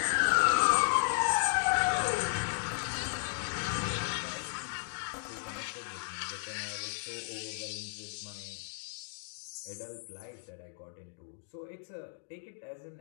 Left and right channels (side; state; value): right; silent; digital silence